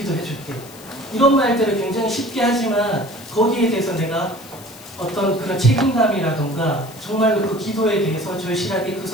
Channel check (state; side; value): noise; left; hiss, 19 dB below the sound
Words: 줄게. 이런 말들을 굉장히 쉽게 하지만 거기에 대해서 내가 어떤 그런 책임감이라던가 정말로 그 기도에 대해서 절실하게 그